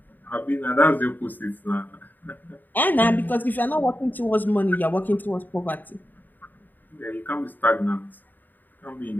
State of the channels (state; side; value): late; right; 0.088 ms